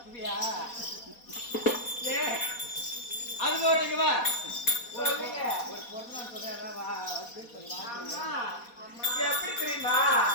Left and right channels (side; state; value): right; late; 4.2 ms